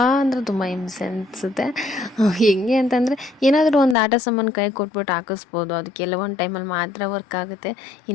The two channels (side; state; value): right; drops out; at 4.0 s